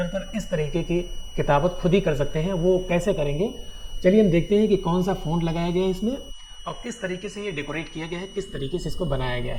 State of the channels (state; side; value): identical; both; correlation 1.00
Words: पर इस तरीके की किताबत खुद ही कर सकते हैं। वो कैसे करेंगे, चलिए हम देखते हैं कि कौन सा फ़ॉन्ट लगाया गया है इसमें और किस तरीके से ये डेकोरेट किया गया है, किस तरीके से इसको बनाया गया